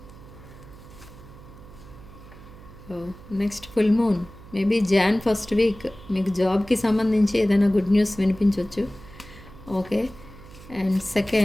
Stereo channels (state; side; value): noise; right; hum, 19 dB below the sound